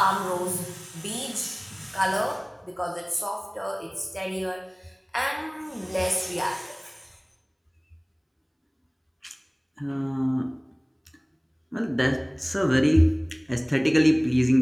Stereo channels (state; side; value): identical; both; correlation 1.00